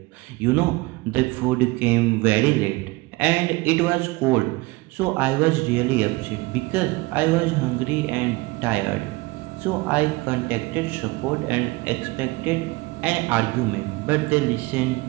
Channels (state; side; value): quieter; left; 22.3 dB